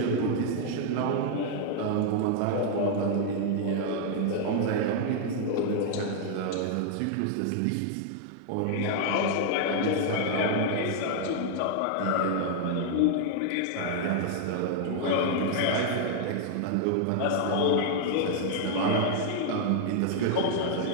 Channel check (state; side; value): different; both; correlation 0.00